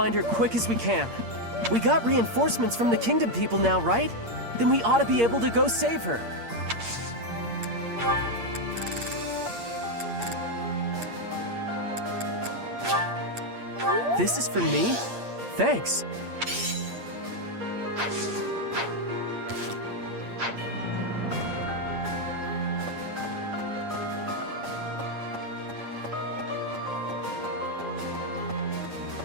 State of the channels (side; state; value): left; late; 8.6 ms